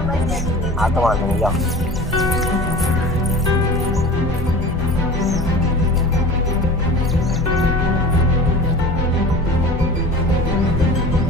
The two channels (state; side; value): noise; left; rumble, 8 dB below the sound